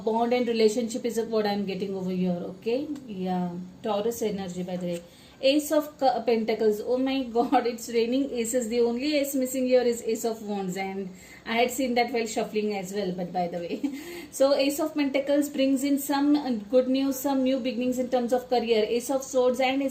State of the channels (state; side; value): identical; both; correlation 1.00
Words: and relationship is what I'm getting over here. Okay, yeah, Taurus energy, by the way. Ace of Pentacles, oh my god, it's raining aces. The only ace missing here is Ace of Wands, and I had seen that while shuffling as well, but by the way. So Ace of Pentacles brings in some good news, some new beginnings in terms of career. Ace of Swords and